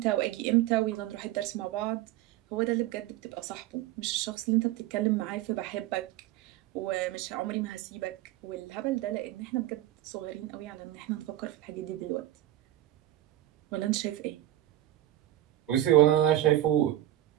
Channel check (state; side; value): quieter; left; 14.1 dB